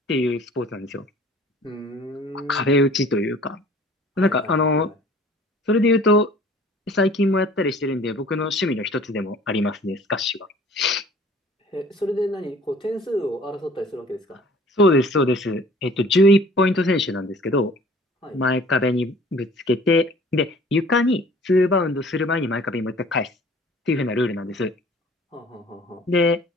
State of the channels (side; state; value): both; normal; correlation 0.50